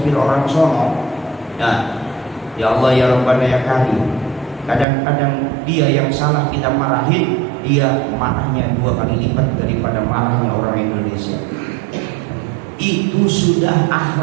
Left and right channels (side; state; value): left; drops out; at 4.9 s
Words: orang sono, ya Allah ya Rabbana ya Karim. Kadang-kadang dia yang salah kita marahin, dia marahnya 2 kali lipat daripada marahnya orang Indonesia. Itu sudah